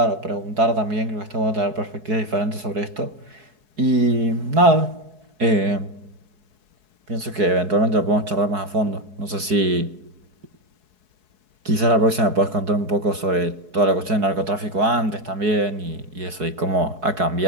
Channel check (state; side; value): late; left; 4.7 ms